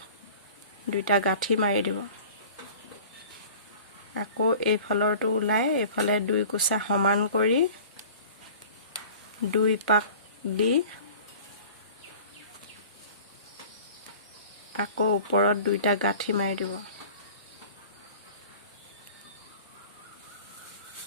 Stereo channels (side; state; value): both; inverted; correlation -0.44